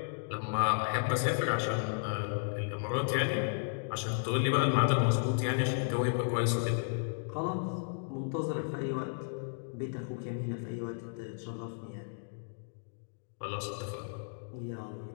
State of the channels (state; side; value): silent; right; digital silence